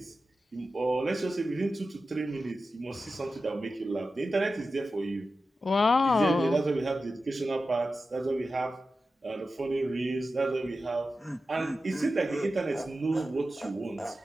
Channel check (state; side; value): normal; both; correlation 0.92